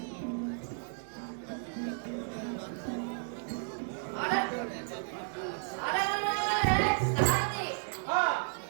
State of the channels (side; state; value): left; silent; 56 dB below the other